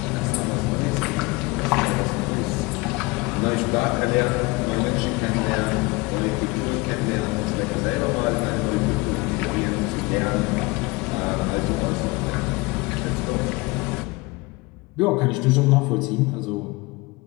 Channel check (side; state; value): right; quieter; 24.3 dB